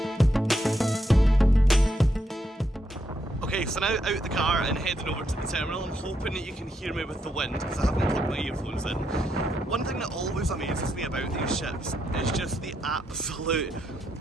Okay, so now out the car and heading over to the terminal. I'm hoping that you can hear me with the wind because I haven't plugged my earphones in. One thing that always amazes me about these ships is just the absolute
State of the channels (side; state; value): both; normal; correlation 0.79